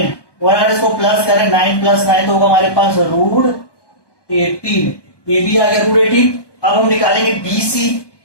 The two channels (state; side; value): late; right; 1.2 ms